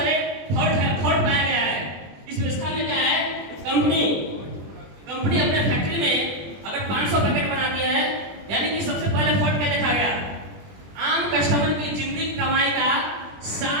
फॉल्ट पाया गया है। इस व्यवस्था में क्या है, कंपनी अपने फैक्ट्री में अगर 500 पैकेट बनाती है, यानी कि सबसे पहले फॉल्ट क्या देखा गया, आम कस्टमर की जिंदगी कमाई का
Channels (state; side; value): late; left; 20 ms